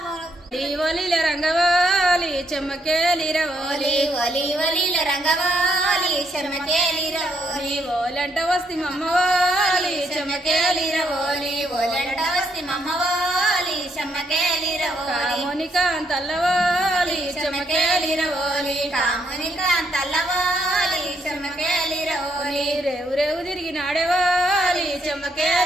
రంగవాలి చెమ్మకేలిరవోలి రంగవాలి చెమ్మకేలిరవోలి ఓలంట వస్తి మమ్మవాలి చెమ్మకేలిరవోలి ఓలంట వస్తి మమ్మవాలి చెమ్మకేలిరవోలి కామునికాంతల్లవాలి చెమ్మకేలిరవోలి కామునికాంతల్లవాలి చెమ్మకేలిరవోలి రేవు రేవు తిరిగి నాడేవాలి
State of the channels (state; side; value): normal; both; correlation 0.74